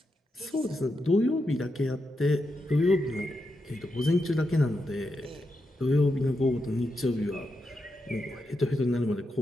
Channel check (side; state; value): both; normal; correlation 0.86